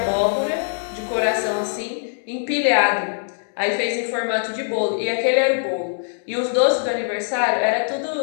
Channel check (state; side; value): silent; right; digital silence